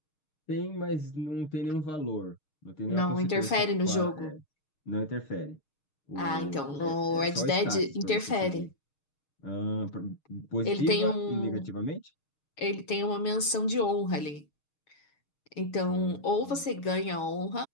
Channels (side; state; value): right; late; 6.5 ms